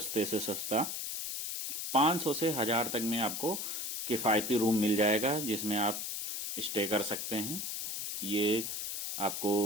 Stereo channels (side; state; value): left; noise; hiss, 3 dB below the sound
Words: से सस्ता। 500 से 1000 तक में आपको किफ़ायती रूम मिल जाएगा, जिसमें आप स्टे कर सकते हैं। ये